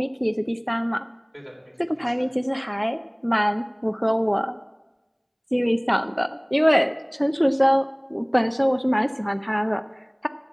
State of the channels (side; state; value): both; identical; correlation 1.00